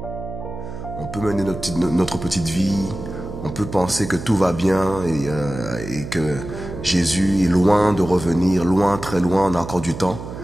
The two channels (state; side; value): noise; right; hum, 10 dB below the sound